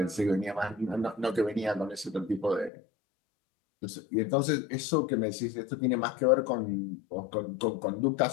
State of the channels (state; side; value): drops out; right; at 2.7 s